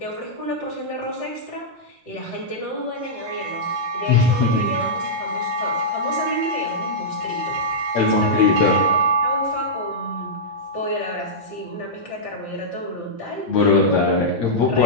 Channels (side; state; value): both; normal; correlation -0.11